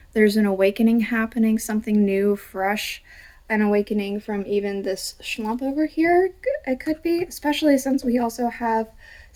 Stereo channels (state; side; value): identical; both; correlation 1.00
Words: There's an awakening happening, something new, fresh, an awakening from even this schlump over here. It could be, especially since we also have